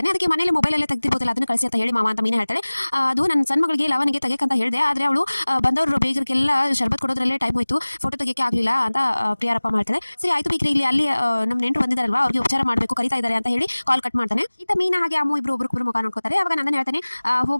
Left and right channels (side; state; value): both; inverted; correlation -1.00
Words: ಅದಕ್ಕೆ ಮನೇಲಿ ಮೊಬೈಲಲ್ಲೇ ತೆಗ್ದಿರ್ಬೋದಲ್ಲ, ಅದನ್ನು ಕಳಿಸಿ ಅಂತ ಹೇಳಿ ಮಾವ ಅಂತ ಮೀನಾ ಹೇಳ್ತಾಳೆ. ಅದು ನನ್ನ ಸಣ್ಣ ಮಗಳಿಗೆ ಲವನಿಗೆ ತೆಗೆಯಕ್ಕಂತ ಹೇಳಿದೆ, ಆದರೆ ಅವಳು ಬಂದವರು ಬೇಗರಿಗೆಲ್ಲ ಶರ್ಬತ್ ಕೊಡೋದ್ರಲ್ಲೇ ಟೈಮ್ ಹೋಯ್ತು, ಫೋಟೋ ತೆಗಿಯಕ್ಕೆ ಆಗಲಿಲ್ಲ ಅಂತ ಪ್ರಿಯಾರಪ್ಪ ಮಾಡ್ತಾರೆ. ಸರಿ ಆಯ್ತು ಬಿಗ್ರೆ, ಇಲ್ಲಿ ಅಲ್ಲಿ ನಮ್ಮ ನೆಂಟರು ಬಂದಿದ್ದಾರಲ್ವಾ, ಅವ್ರಿಗೆ ಉಪಚಾರ ಮಾಡಬೇಕು, ಕರಿತಾ ಇದ್ದಾರೆ ಅಂತ ಹೇಳಿ ಕಾಲ್ ಕಟ್ ಮಾಡ್ತಾನೆ. ಇತ್ತ ಮೀನಾ ಹಾಗೆ ಅಮ್ಮು ಇಬ್ರು ಒಬ್ರು ಮುಖ ನೋಡ್ಕೋತಾರೆ. ಅವಾಗ ನಂದನ್ ಹೇಳ್ತಾನೆ,